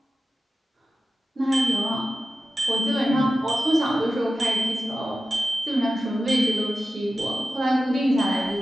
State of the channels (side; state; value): both; normal; correlation 0.93